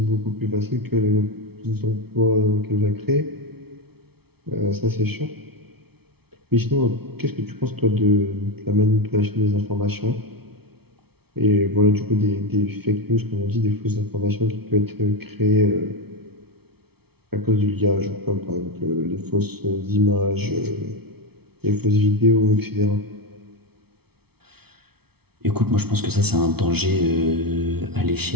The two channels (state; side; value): late; left; 0.96 ms